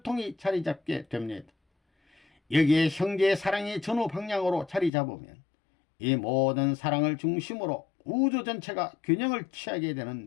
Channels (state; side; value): drops out; right; at 4.9 s